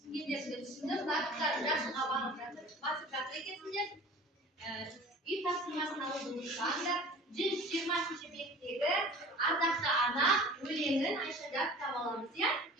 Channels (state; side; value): normal; both; correlation 0.43